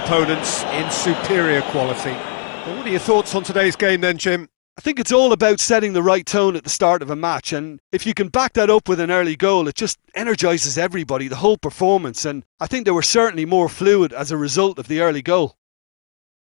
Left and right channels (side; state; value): right; silent; digital silence